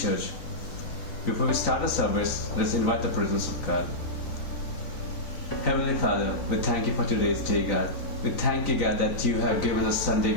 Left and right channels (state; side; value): late; right; 3.9 ms